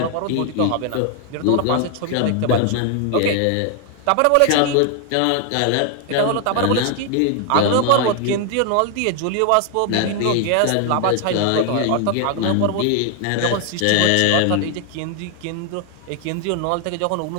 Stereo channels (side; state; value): both; different; correlation 0.01